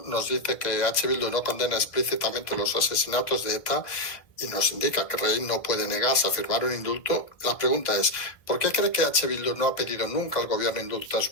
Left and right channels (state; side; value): late; right; 1.6 ms